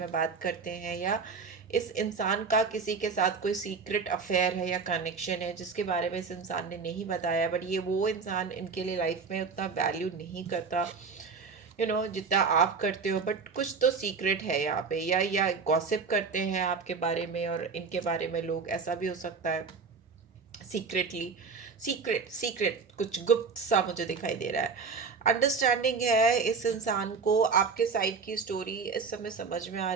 बात करते हैं, या इस इंसान का किसी के साथ कोई सीक्रेट अफेयर है या कनेक्शन है जिसके बारे में इस इंसान ने नहीं बताया, बट ये वो इंसान इनके लिए लाइफ में उतना वैल्यू नहीं करता, जितना आप करते हो, बट कुछ तो सीक्रेट है यहाँ पे, या गॉसिप करते हैं आपके बारे में और इनके बारे में लोग, ऐसा भी हो सकता है, सीक्रेटली, सीक्रेट सीक्रेट कुछ गुप्त सा मुझे दिखाई दे रहा है। अंडरस्टैंडिंग है इस इंसान को, आपके साइड की स्टोरी इस समय समझ में आ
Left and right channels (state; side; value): quieter; left; 5.0 dB